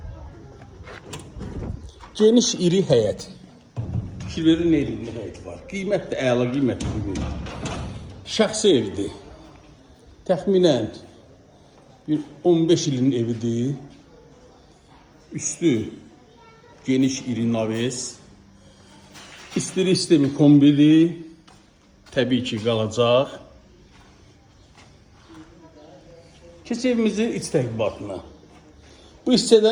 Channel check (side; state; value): both; identical; correlation 1.00